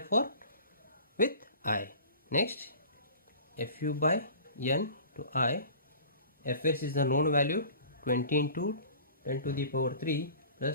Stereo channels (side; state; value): both; inverted; correlation -0.43